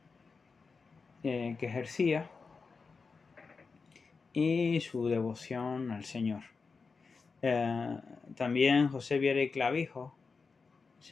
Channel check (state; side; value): quieter; right; 4.7 dB